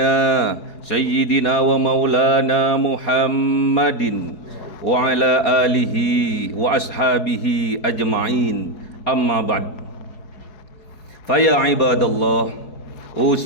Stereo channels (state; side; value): late; right; 4.7 ms